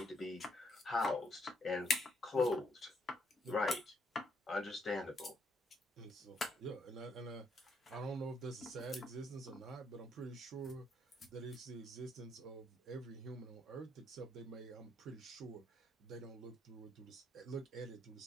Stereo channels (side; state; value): both; normal; correlation 0.73